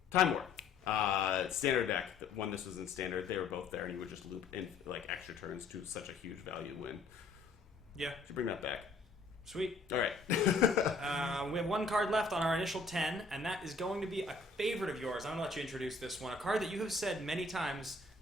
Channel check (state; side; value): quieter; right; 3.8 dB